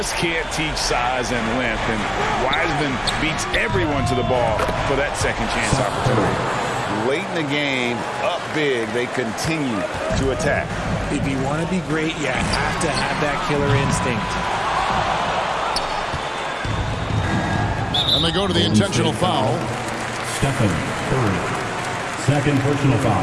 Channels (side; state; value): both; identical; correlation 1.00